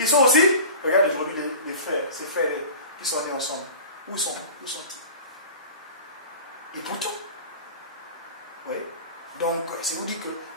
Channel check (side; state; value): both; inverted; correlation -0.37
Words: sont aussi. Regarde aujourd'hui les frères, ces frères qui sont nés ensemble. Où sont-ils? Et pour tout. Oui. Donc, ça vous dit que